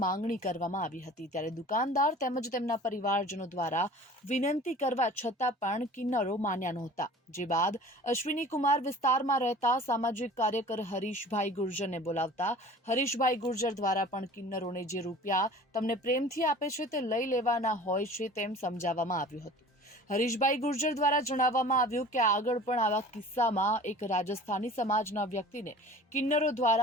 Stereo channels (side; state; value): both; normal; correlation 0.43